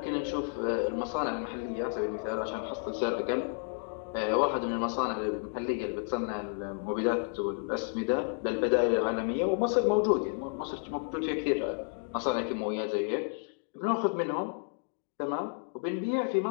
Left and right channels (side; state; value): right; silent; 57 dB below the other